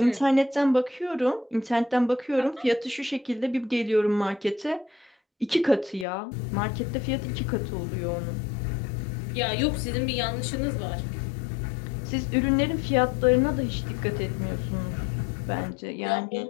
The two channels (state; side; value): drops out; right; at 6.1 s